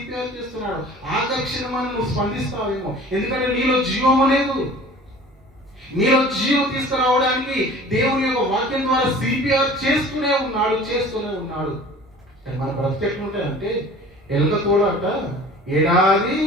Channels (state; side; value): normal; both; correlation 0.45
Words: చేస్తున్నాడు. ఆకర్షణ నువ్వు స్పందిస్తావేమో, ఎందుకంటే నీలో జీవం లేదు. నీలో జీవం తీసుకురావడానికి దేవుని యొక్క వాక్యం ద్వారా సిపిఆర్ చేస్తూనే ఉన్నాడు. మన బ్రతుకు ఎట్లుంటాయంటే ఎలుక తోలాట ఏడాది